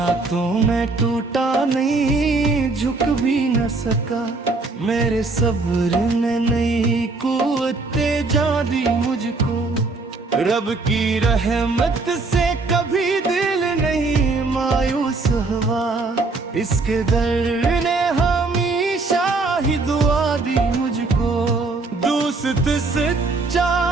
तो मैं टूटा नहीं, झुक भी न सका। मेरे सब्र ने नई कुव्वते जा दी मुझको। रब की रहमत से कभी दिल नहीं मायूस हुआ। इसके दर ने हमेशा ही दुआ दी मुझको। दोस्त सच्चा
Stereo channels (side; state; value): left; quieter; 3.6 dB